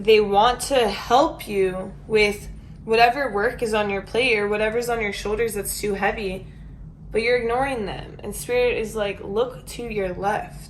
want to help you with whatever work is on your plate or whatever's on your shoulders that's too heavy, but you're ignoring them. And Spirit is like, look to your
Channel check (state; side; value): identical; both; correlation 1.00